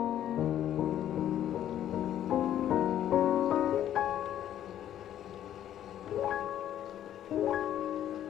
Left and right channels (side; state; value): right; quieter; 11.2 dB